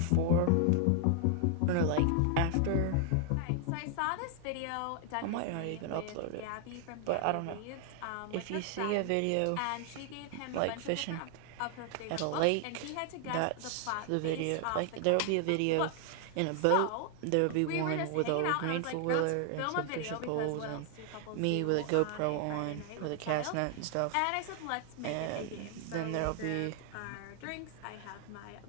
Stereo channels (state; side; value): different; both; correlation 0.00